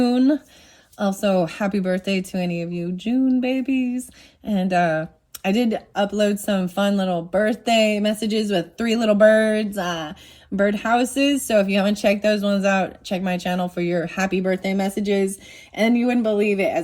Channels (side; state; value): both; identical; correlation 1.00